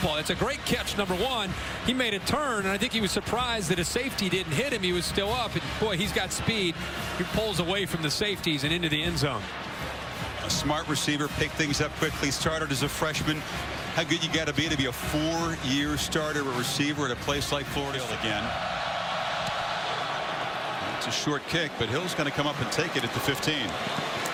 It's a great catch, number 1. He made a turn, and I think he was surprised that a safety didn't hit him. He was still up, and boy, he's got speed. He pulls away from the safeties and into the end zone. A smart receiver, pick things up quickly, started as a freshman. How good you got to be a 4-year starter, a receiver at a place like Florida again. It's a short kick, but Hill's going to come up and take it at the 15.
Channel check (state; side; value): identical; both; correlation 1.00